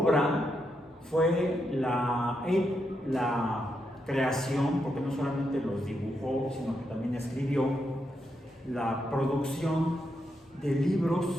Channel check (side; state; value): both; normal; correlation 0.82